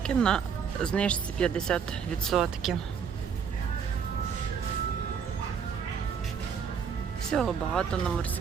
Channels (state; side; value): quieter; left; 6.9 dB